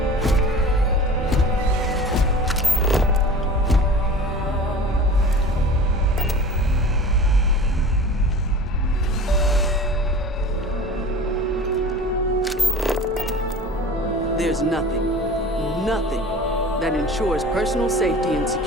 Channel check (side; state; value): both; normal; correlation 0.39